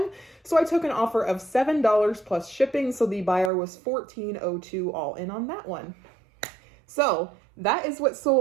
So I took an offer of $7 plus shipping. So the buyer was $14.02 all in on that one. So that is what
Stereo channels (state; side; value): drops out; left; at 3.5 s